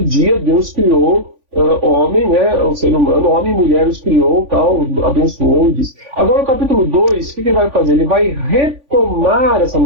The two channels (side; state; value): left; late; 3.5 ms